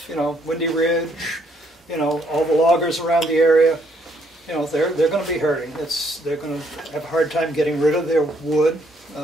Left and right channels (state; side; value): normal; both; correlation 0.69